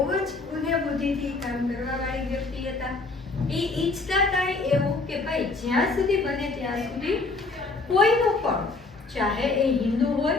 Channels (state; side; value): quieter; right; 3.6 dB